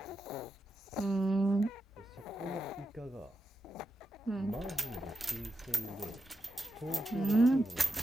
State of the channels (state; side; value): normal; both; correlation 0.88